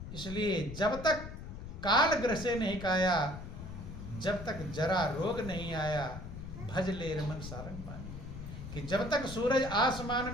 इसलिए जब तक काल ग्रह से नहीं काया, जब तक जरा रोग नहीं आया, भज ले रमन सारंग पानी। कि जब तक सूरज आसमान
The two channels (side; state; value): left; noise; rumble, 10 dB below the sound